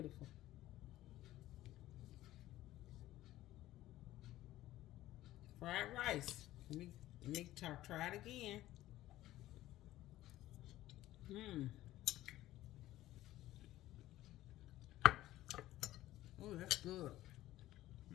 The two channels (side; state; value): right; quieter; 15.2 dB